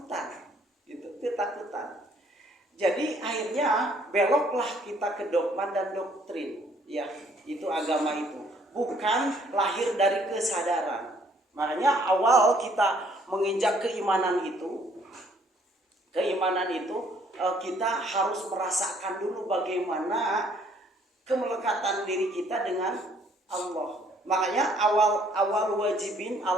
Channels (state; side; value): normal; both; correlation 0.63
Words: Gitu, ketakutan. Jadi akhirnya beloklah kita ke dogma dan doktrin, ya, itu agama itu bukan lahir dari kesadaran. Makanya awal kita menginjak keimanan itu kita harus merasakan dulu bagaimana kemelekatan diri kita dengan Allah. Makanya awal wajibin